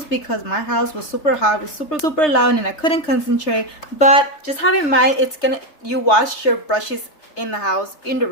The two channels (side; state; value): right; late; 3.3 ms